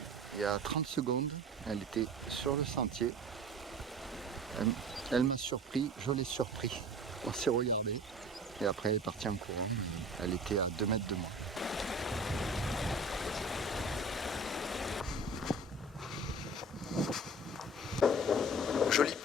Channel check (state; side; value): normal; both; correlation 0.40